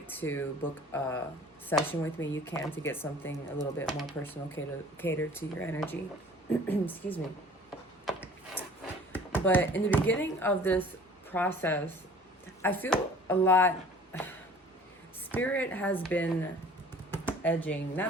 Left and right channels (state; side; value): normal; both; correlation 0.49